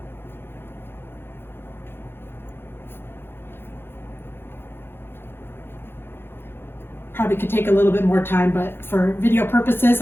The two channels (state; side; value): late; right; 0.11 ms